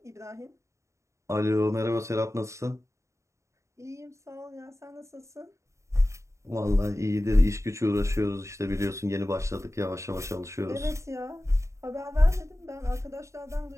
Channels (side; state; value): left; late; 0.14 ms